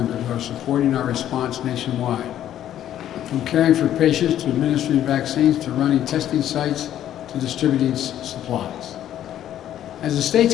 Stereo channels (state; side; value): quieter; right; 11.4 dB